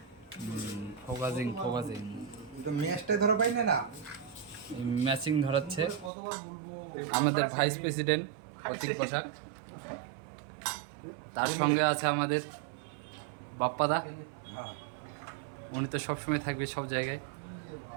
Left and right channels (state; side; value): drops out; left; at 6.1 s